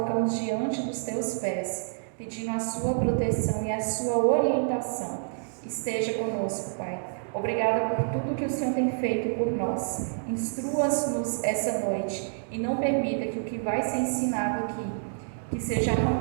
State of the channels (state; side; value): silent; left; digital silence